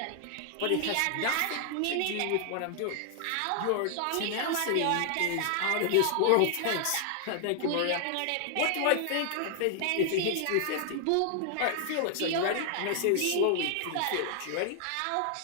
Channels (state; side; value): different; both; correlation 0.00